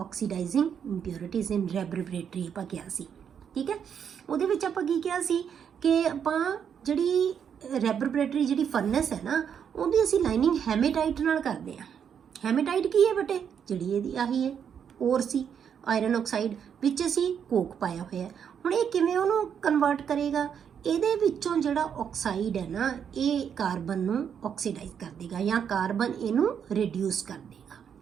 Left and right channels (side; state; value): left; quieter; 7.9 dB